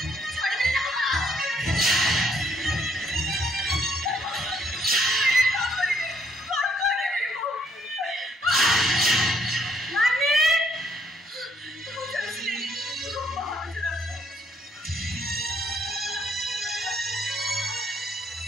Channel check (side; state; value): both; normal; correlation 0.69